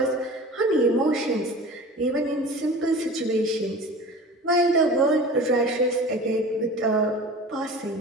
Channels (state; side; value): normal; both; correlation 0.38